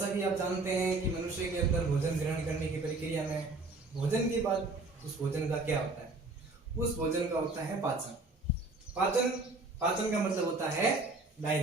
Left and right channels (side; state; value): left; quieter; 3.3 dB